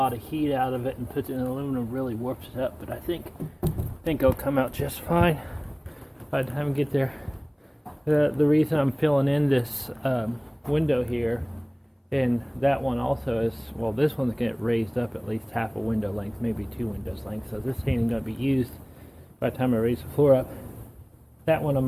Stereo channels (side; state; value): both; identical; correlation 1.00